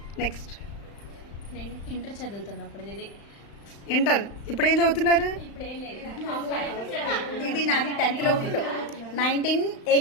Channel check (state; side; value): late; right; 35 ms